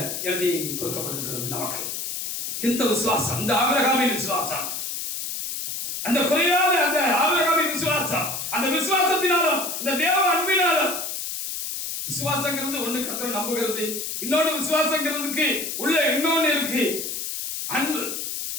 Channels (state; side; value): noise; left; hiss, 4 dB below the sound